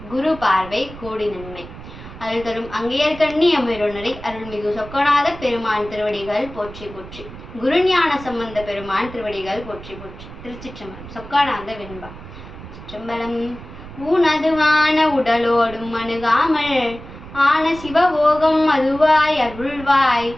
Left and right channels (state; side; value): noise; right; rumble, 15 dB below the sound